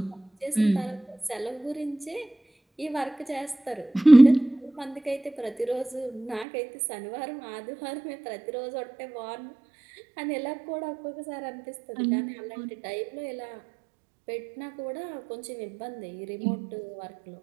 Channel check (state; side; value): drops out; left; at 6.5 s